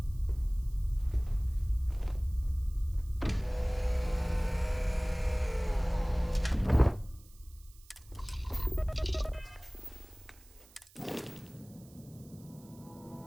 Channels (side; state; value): right; noise; hiss, 25 dB below the sound